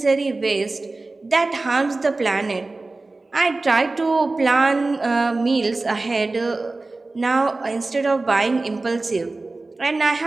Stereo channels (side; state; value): left; quieter; 3.3 dB